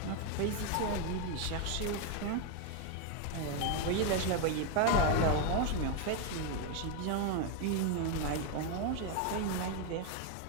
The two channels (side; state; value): both; different; correlation 0.01